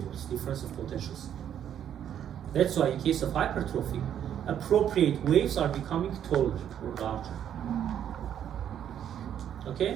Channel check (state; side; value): quieter; left; 9.7 dB